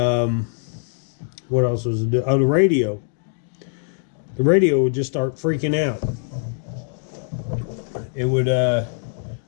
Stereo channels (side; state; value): right; silent; digital silence